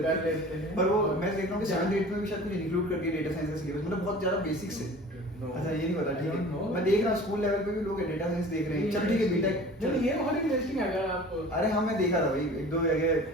हैं, पर वो मैं देख रहा हूँ कि 7th 8th में भी शायद कुछ इंक्लूड कर दिया डेटा साइंस का सिलेबस, मतलब बहुत ज्यादा बेसिक्स है। अच्छा ये नहीं पता, ठीक है मैं देख रहा हूँ स्कूल लेवल पे भी लोग डेटा साइंस देख रहे हैं, चल ठीक है बीटेक, चलो ये बहुत इंटरेस्टिंग है अगर आप, अरे हाँ मैं देखा था भाई एक दो जगह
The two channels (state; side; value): normal; both; correlation 0.43